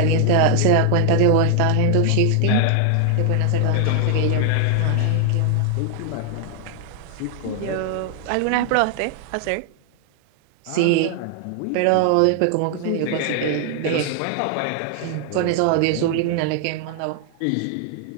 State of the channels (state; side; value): different; both; correlation 0.00